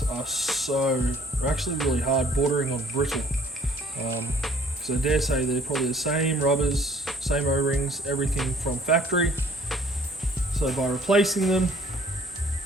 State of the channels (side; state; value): both; normal; correlation 0.56